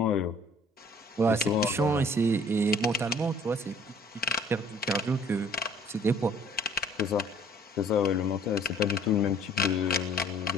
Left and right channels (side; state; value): both; normal; correlation 0.56